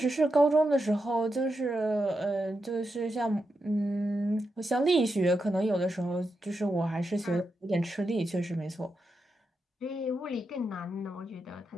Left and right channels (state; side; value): normal; both; correlation 0.87